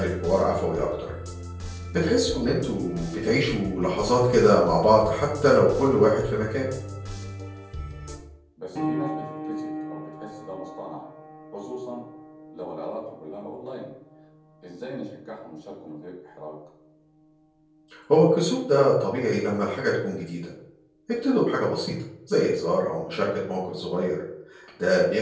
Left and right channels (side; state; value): both; identical; correlation 1.00